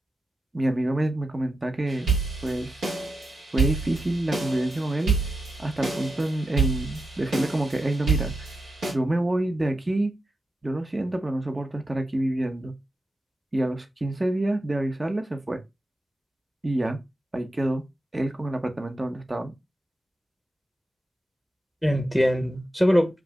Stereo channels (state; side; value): normal; both; correlation 0.88